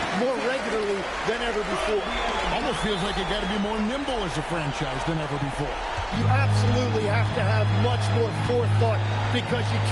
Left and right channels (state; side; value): identical; both; correlation 1.00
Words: more regularly than ever before. Almost feels like you got to be more nimble as a franchise than ever before. You absolutely have to have much more forethought because you